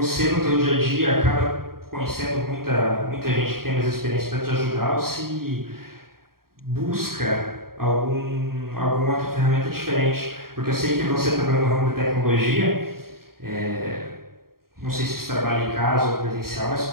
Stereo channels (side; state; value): left; late; 0.93 ms